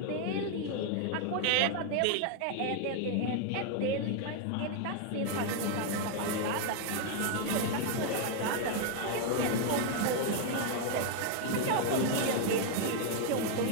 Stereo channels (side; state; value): both; different; correlation 0.00